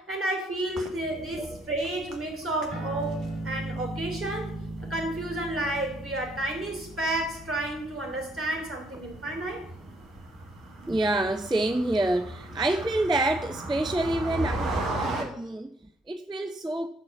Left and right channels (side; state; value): both; normal; correlation 0.69